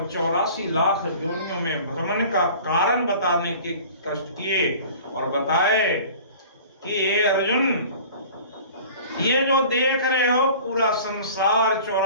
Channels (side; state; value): both; inverted; correlation -0.44